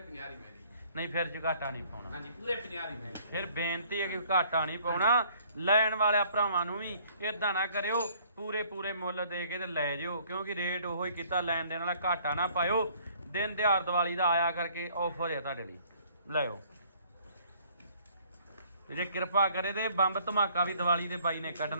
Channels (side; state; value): both; inverted; correlation -0.59